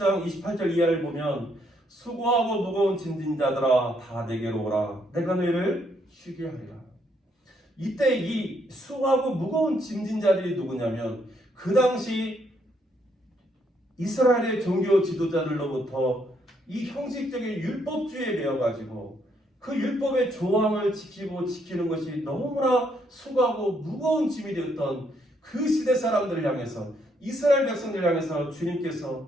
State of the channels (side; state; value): both; normal; correlation 0.73